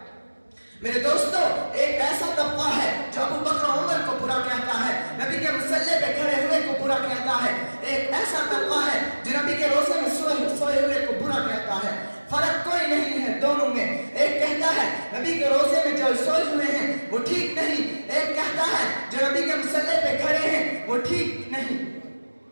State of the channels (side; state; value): both; inverted; correlation -1.00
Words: میرے دوستو، ایک ایسا طبقہ ہے جو ابو بکر عمر کو برا کہتا ہے، نبی کے مصلی پہ کھڑے ہوئے کو برا کہتا ہے، ایک ایسا طبقہ ہے جو نبی کے روزے میں سوئے ہوئے کو برا کہتا ہے۔ فرق کوئی نہیں ہے دونوں میں، ایک کہتا ہے نبی کے روزے میں جو سوئے ہوئے ہیں وہ ٹھیک نہیں، ایک کہتا ہے جو نبی کے مصلی پہ کھڑے ہیں وہ ٹھیک نہیں۔